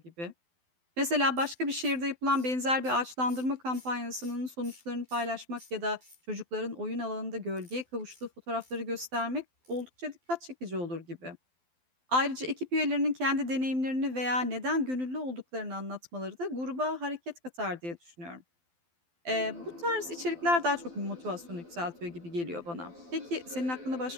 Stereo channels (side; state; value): left; late; 12 ms